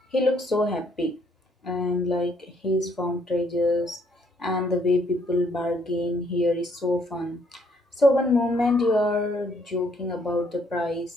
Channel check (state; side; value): normal; both; correlation 0.68